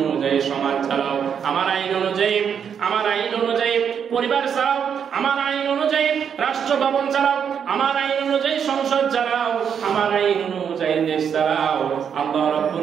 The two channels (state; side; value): quieter; left; 7.6 dB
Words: অনুযায়ী সমাজ চালাও, আমার আইন অনুযায়ী পরিবার চালাও, আমার আইন অনুযায়ী রাষ্ট্র ভবন চালাও, আমার আইন অনুযায়ী সংসদ চালাও, আমার আইন অনুযায়ী দেশ চালাও। আল্লাহ